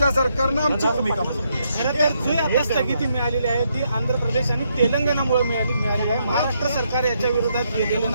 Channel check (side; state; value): both; inverted; correlation -0.77